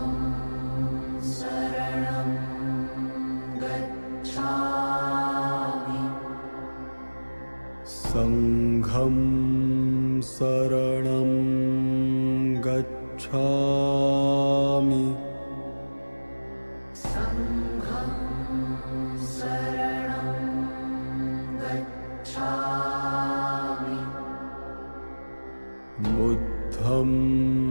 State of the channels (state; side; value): inverted; both; correlation -1.00